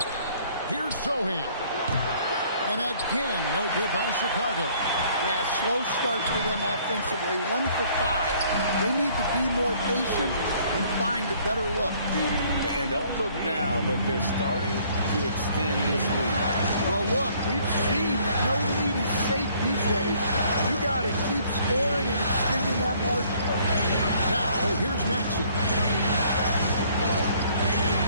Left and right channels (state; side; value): inverted; both; correlation -0.60